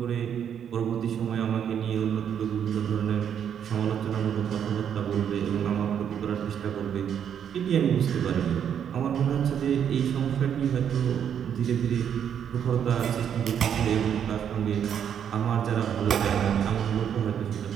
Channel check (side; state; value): left; quieter; 8.6 dB